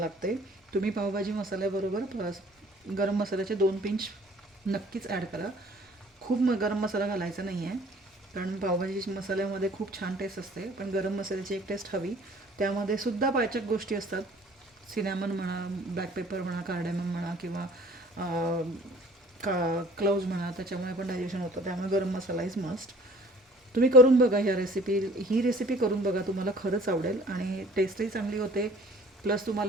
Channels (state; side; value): normal; both; correlation 0.52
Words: तुम्ही पावभाजी मसाल्याबरोबर गरम मसाल्याचे 2 पिंच नक्कीच ॲड करा. खूप गरम मसाला घालायचा नाही आहे, कारण पावभाजी मसाल्यामध्ये खूप छान टेस्ट असते, पण गरम मसाल्याची एक टेस्ट हवी. त्यामध्ये सुद्धा पाचक गोष्टी असतात, सिनॅमन म्हणा, ब्लॅक पेपर म्हणा, कार्डेमम म्हणा, किंवा क्लोव्ज म्हणा, त्याच्यामुळे पण डायजेशन होतं. त्यामुळे गरम मसाला इज मस्ट. तुम्ही करून बघा ही रेसिपी करून बघा, तुम्हाला खरंच आवडेल आणि टेस्टही चांगली होते. प्लस